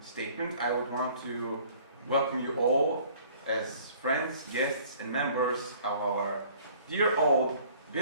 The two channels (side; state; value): both; inverted; correlation -0.54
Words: statement, I would want to welcome you all as friends, guests, and members of our dear old